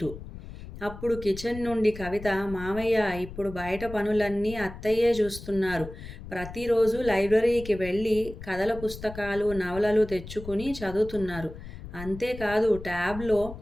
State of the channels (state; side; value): noise; left; rumble, 13 dB below the sound